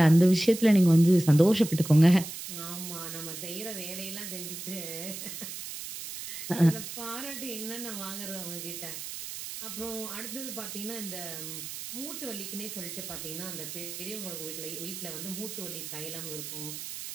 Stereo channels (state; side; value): noise; right; hiss, 9 dB below the sound